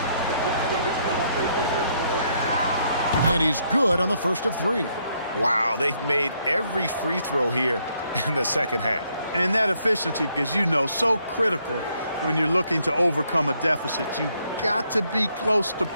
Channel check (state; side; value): inverted; both; correlation -0.72